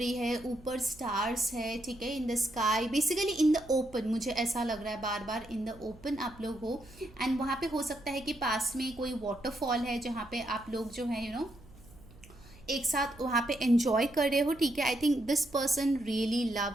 है, ऊपर स्टार्स है, ठीक है, in the sky, basically in the open, मुझे ऐसा लग रहा है बार बार इन द ओपन आप लोग हो। एंड वहाँ पे हो सकता है कि पास में कोई वाटरफॉल है जहाँ पे आप लोग जो है यू नो एक साथ वहाँ पे एंजॉय कर रहे हो, ठीक है। I think this person really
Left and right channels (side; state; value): right; noise; hum, 22 dB below the sound